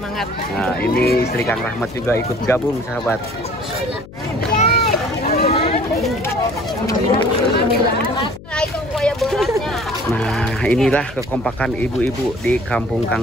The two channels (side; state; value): left; noise; hum, 17 dB below the sound